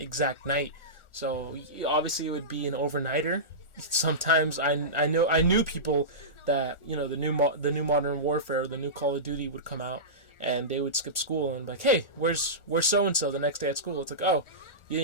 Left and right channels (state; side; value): late; right; 1.4 ms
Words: exact night. So obviously it would be an overnighter. Sometimes I knew people that the new Modern Warfare, the new Call of Duty would come out, and they would skip school and be like, hey, where's so and so the next day at school? It's like, oh, you